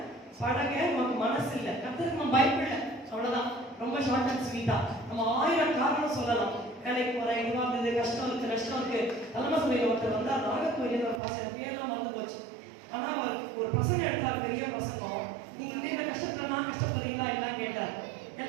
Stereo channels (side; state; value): left; drops out; at 11.2 s